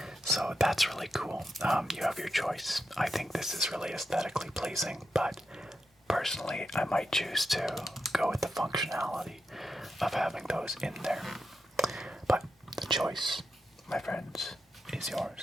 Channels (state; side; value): normal; both; correlation 0.87